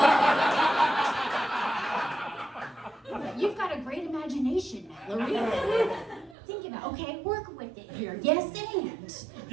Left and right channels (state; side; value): drops out; left; at 6.4 s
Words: You've got a great imagination, Mallory. Think about, okay, work with it here. Yes, and. It's